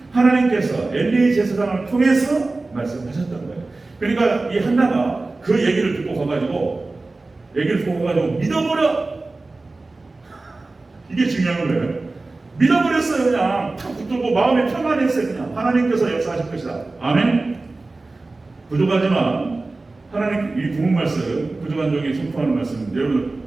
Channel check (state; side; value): quieter; left; 3.3 dB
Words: 하나님께서 엘리 제사장을 통해서 말씀하셨던 거예요. 그러니까 이 한나가 그 얘기를 듣고 가가지고 믿어버려. 이게 중요한 거예요. 믿어버렸어요. 그냥 탁 붙들고 마음에 평안했어요. 그냥 하나님께서 역사하실 것이다. 아멘. 부족하지만 하나님 이 구문 말씀, 부족한 종이 선포하는 말씀, 여러분